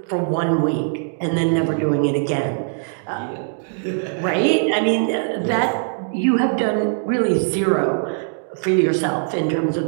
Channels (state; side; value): silent; left; 61 dB below the other